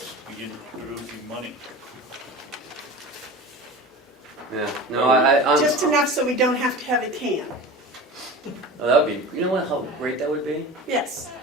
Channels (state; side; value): normal; both; correlation 0.33